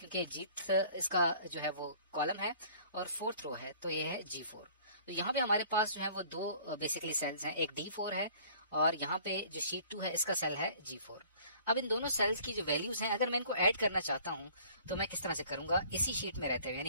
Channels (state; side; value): inverted; both; correlation -0.52